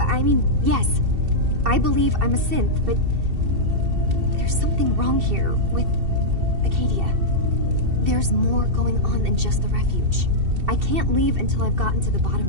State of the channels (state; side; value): late; left; 2.7 ms